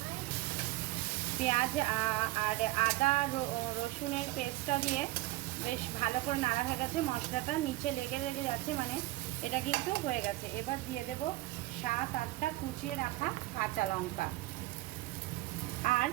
পেঁয়াজ আর আদা রসুনের পেস্টটা দিয়ে বেশ ভালো করে নাড়া হয়ে গেছে। মশলাটা নিচে লেগে যাচ্ছে, মানে এটা কিন্তু হয়ে গেছে। এবার দিয়ে দেব 7-8টা কুচিয়ে রাখা কাঁচা লঙ্কা। আর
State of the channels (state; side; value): quieter; left; 18.6 dB